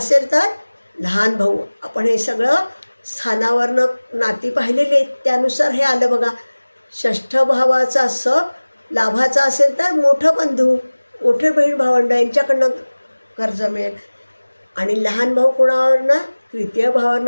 तर लहान भाऊ. आपण हे सगळं स्थानावरनं नाती पाहिलेली आहेत, त्यानुसार हे आलं बघा. षष्ठ भावाचा लाभाचा असेल तर मोठं बंधू, मोठे बहीण भावंड यांच्याकडनं कर्ज मिळेल. आणि लहान भाऊ कोणावरनं? तृतीय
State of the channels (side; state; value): both; inverted; correlation -1.00